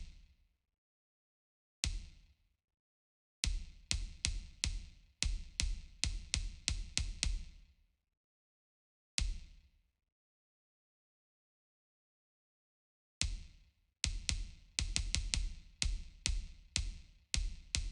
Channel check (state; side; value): identical; both; correlation 1.00